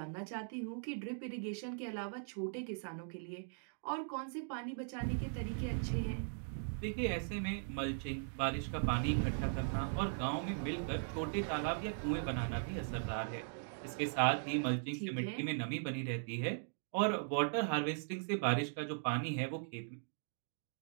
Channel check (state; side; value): silent; left; digital silence